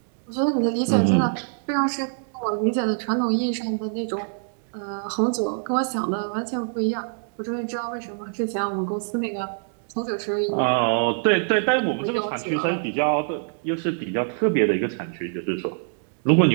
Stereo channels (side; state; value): left; silent; digital silence